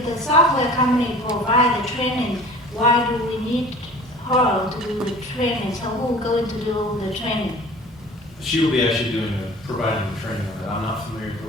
the software company provide the training, why do we need her to do the training? So who's going to do the training? She will be actually providing the training on that. I'm not familiar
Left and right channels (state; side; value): normal; both; correlation 0.43